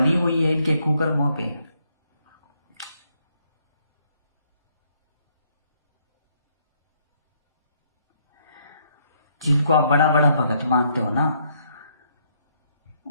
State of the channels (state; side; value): inverted; both; correlation -0.71